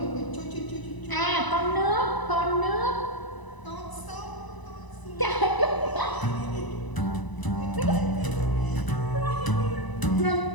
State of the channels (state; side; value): late; right; 1.0 ms